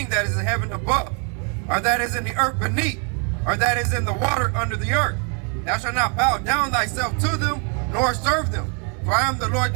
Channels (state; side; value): quieter; left; 38.4 dB